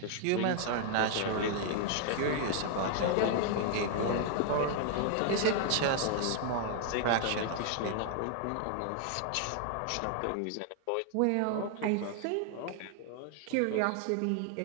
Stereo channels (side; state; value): both; different; correlation 0.00